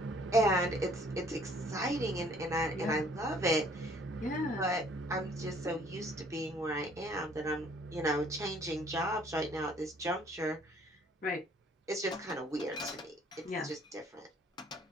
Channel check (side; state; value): both; normal; correlation 0.59